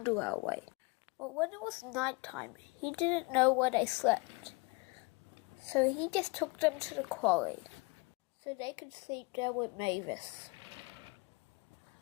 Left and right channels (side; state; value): right; quieter; 27.7 dB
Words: the railway. But when it was night time, he didn't know where they slept. So he just took them to the quarry, so they could sleep there with Mavis.